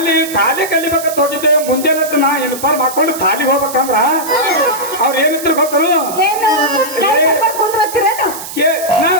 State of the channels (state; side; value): noise; right; hiss, 11 dB below the sound